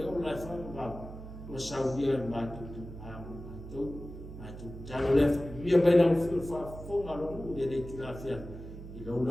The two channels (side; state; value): right; noise; hum, 12 dB below the sound